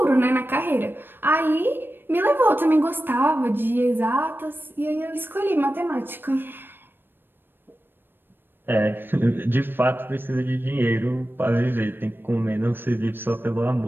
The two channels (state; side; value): late; left; 0.098 ms